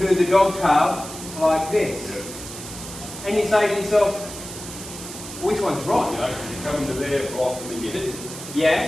do the dog tail like this. Yeah. And you say to yourself, which one's You right? know, you come into there, block, and then you hit it. Yeah?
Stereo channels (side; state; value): right; noise; hiss, 11 dB below the sound